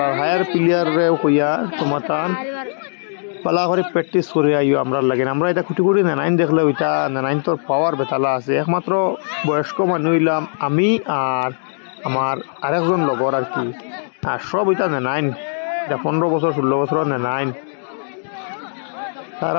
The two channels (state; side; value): silent; right; digital silence